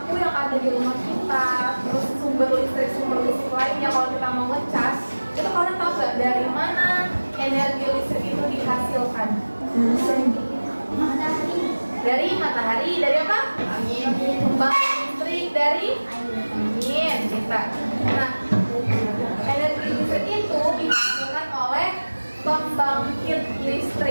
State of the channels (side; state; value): both; inverted; correlation -1.00